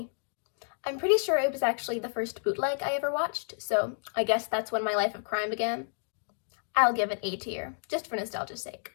I'm pretty sure it was actually the first bootleg I ever watched, so I guess that's when my life of crime began. I'll give it A tier, just for nostalgia's sake.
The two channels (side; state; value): right; silent; digital silence